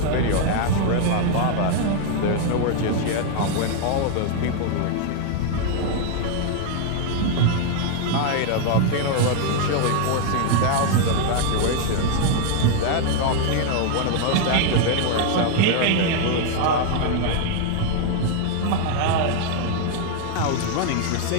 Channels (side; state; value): both; different; correlation 0.00